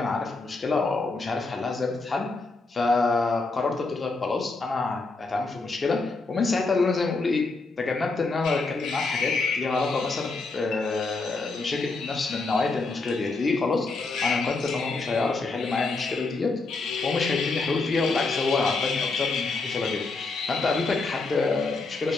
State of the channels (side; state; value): right; quieter; 3.7 dB